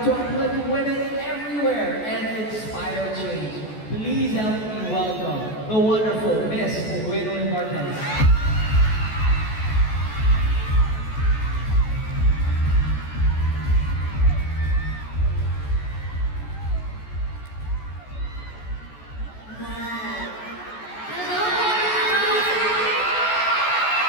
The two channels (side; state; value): right; late; 14 ms